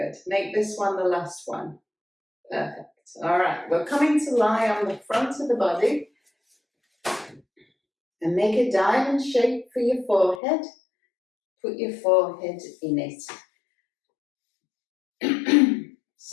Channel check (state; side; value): drops out; right; at 10.4 s